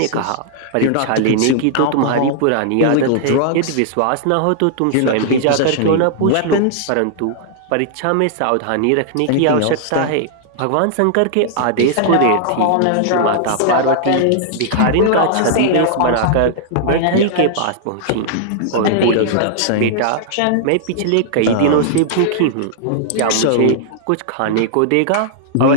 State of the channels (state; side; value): different; both; correlation -0.01